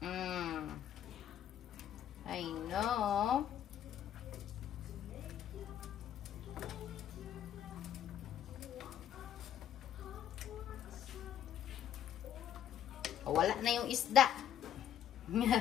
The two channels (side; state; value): right; quieter; 10.2 dB